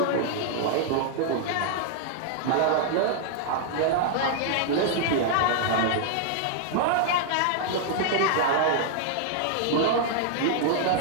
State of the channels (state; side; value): different; both; correlation -0.01